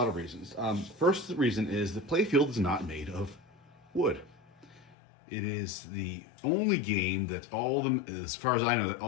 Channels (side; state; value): right; drops out; at 5.0 s